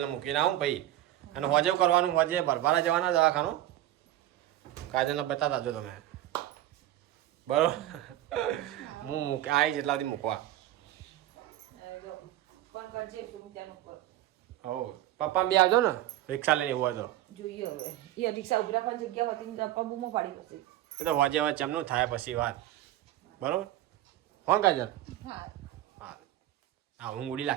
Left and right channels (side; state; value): left; quieter; 14.0 dB